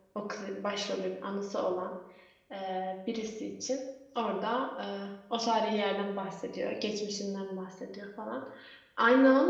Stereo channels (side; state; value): both; identical; correlation 1.00